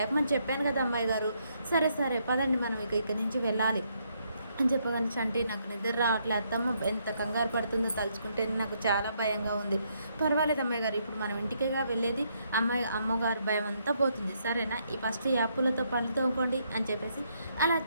చెప్పాను కదా అమ్మాయి గారు. సరే సరే పదండి మనం ఇక్కడి నుంచి వెళ్ళాలి అని చెప్పగానే చంటి నాకు నిద్ర రావట్లే అత్తమ్మ ఎంత కంగారు పడుతుందో తలుచుకుంటే నాకు చాలా భయంగా ఉంది. పర్వాలేదు అమ్మాయి గారు ఇప్పుడు మనం ఇంటికేగా వెళ్ళేది అమ్మగారు భయం అంతా పోతుంది సరేనా ఈ ఫస్ట్ యాప్పులతో పనులు తోముకోండి అని చెప్పేసి అలా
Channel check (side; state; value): both; inverted; correlation -0.74